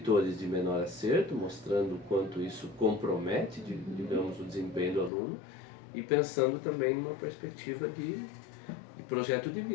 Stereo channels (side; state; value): right; drops out; at 5.1 s